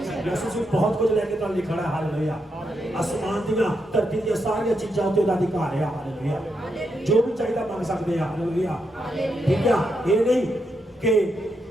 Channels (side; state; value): both; normal; correlation 0.82